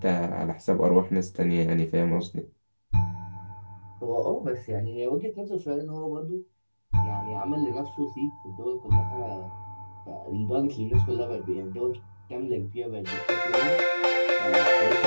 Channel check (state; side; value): inverted; both; correlation -1.00